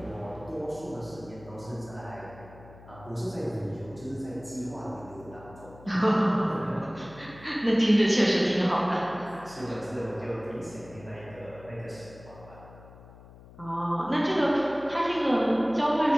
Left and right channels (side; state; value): left; noise; hum, 20 dB below the sound